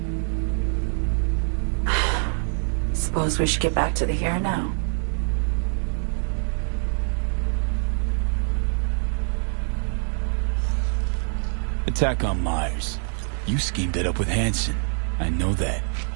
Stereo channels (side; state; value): left; silent; 55 dB below the other